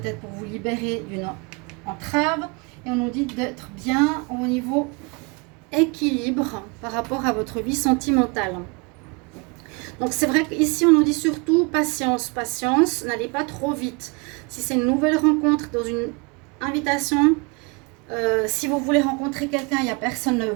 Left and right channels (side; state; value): left; quieter; 30.2 dB